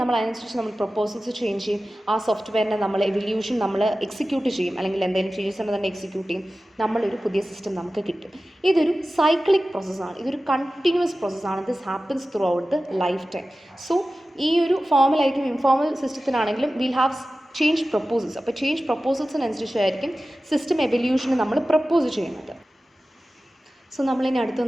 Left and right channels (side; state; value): both; normal; correlation 0.95